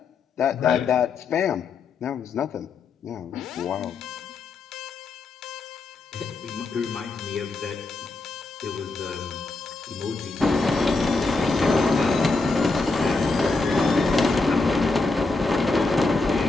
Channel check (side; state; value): right; quieter; 3.7 dB